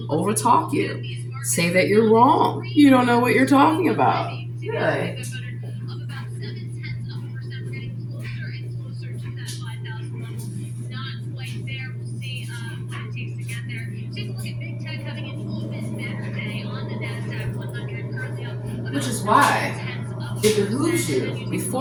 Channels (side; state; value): both; identical; correlation 1.00